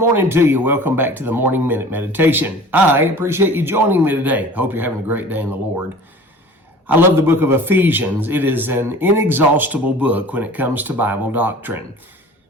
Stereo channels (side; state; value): both; normal; correlation 0.43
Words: to you. Welcome back to the Morning Minute Meditation. I appreciate you joining me today. Hope you're having a great day in the Lord. I love the book of Ephesians. It is an inexhaustible book when it comes to Bible doctrine.